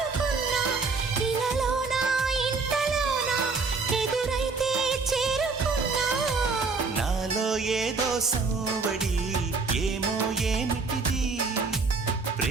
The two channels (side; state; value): left; quieter; 4.3 dB